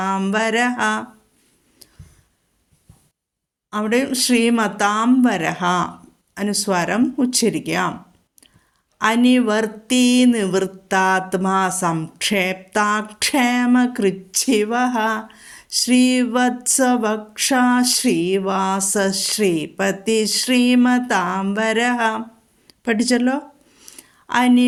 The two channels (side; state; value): both; identical; correlation 1.00